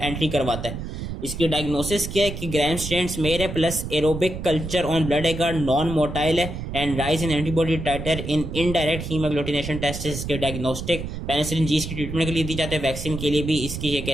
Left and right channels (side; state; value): right; noise; rumble, 7 dB below the sound